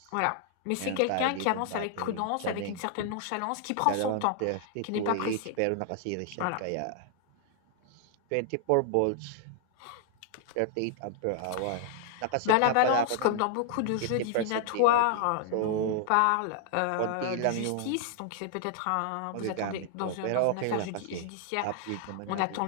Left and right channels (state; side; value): different; both; correlation 0.00